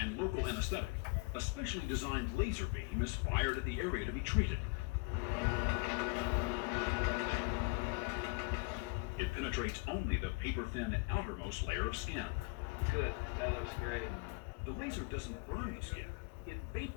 local anesthetic, a specially designed laser beam is fired at the area to be treated. It penetrates only the paper-thin outermost layer of skin. Good, that looks great. The laser doesn't burn the skin. It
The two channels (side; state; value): right; quieter; 28.1 dB